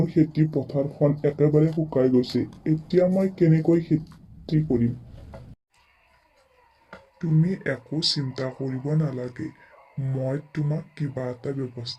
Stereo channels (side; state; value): both; identical; correlation 1.00